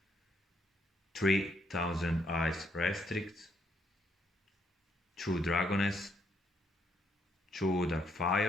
3000 ice restricts, 2 Dragoness, 2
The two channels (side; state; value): both; normal; correlation 0.73